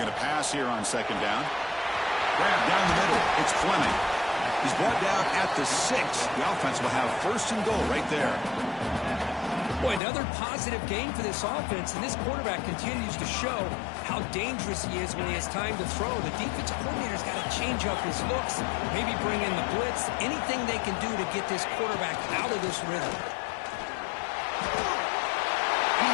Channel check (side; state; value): right; drops out; at 10.0 s